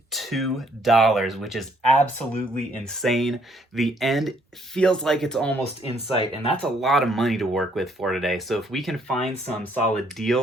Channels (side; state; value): both; normal; correlation 0.67